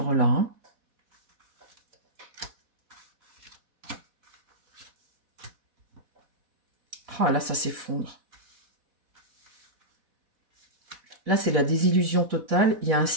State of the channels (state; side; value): late; left; 4.1 ms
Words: là. Hein. Ah, là, ça s'effondre. Là, c'est la désillusion totale. Il y a un